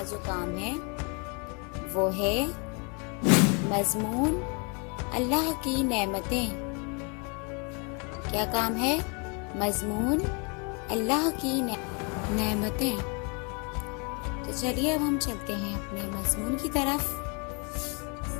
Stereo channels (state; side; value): quieter; right; 34.4 dB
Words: جو کام ہے وہ ہے مضمون اللہ کی نعمتیں۔ کیا کام ہے؟ مضمون اللہ کی نعمتیں۔ تو چلیے اب ہم چلتے ہیں اپنے مضمون کی طرف